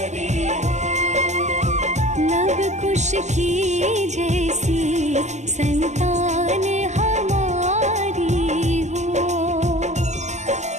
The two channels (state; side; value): late; left; 0.33 ms